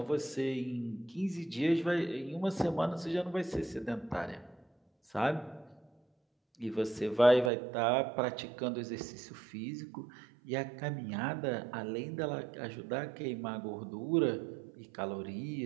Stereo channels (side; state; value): left; drops out; at 7.5 s